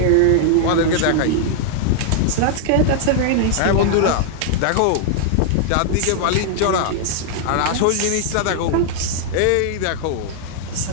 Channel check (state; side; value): different; both; correlation -0.01